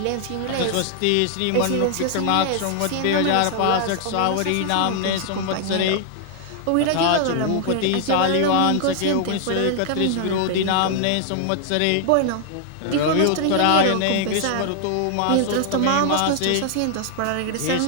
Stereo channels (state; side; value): different; both; correlation 0.00